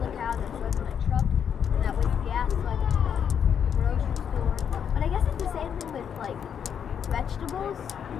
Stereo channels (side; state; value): right; quieter; 8.0 dB